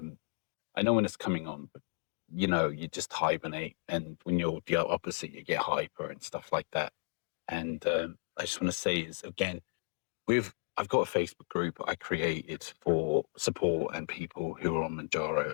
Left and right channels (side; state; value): right; silent; digital silence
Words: know when it's coming on, but you just hibernate, and when you're the opposite, you get hyper and stuff like that. And I just want to say is again, I've got a Facebook group I created for support and people who are on